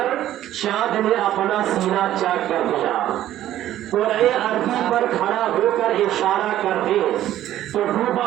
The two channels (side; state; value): left; quieter; 12.8 dB